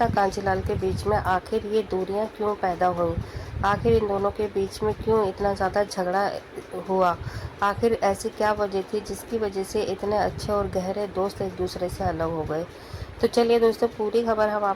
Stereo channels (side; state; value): both; identical; correlation 1.00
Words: कांजीलाल के बीच में आखिर ये दूरियां क्यों पैदा हुई। आखिर इन दोनों के बीच में क्यों इतना ज़्यादा झगड़ा हुआ। आखिर ऐसी क्या वजह थी जिसकी वजह से इतने अच्छे और गहरे दोस्त एक दूसरे से अलग हो गए। तो चलिए दोस्तों, पूरी खबर हम